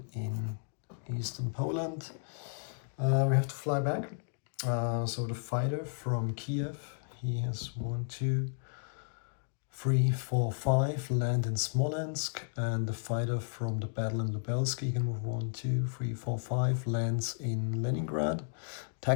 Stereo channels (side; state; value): right; silent; digital silence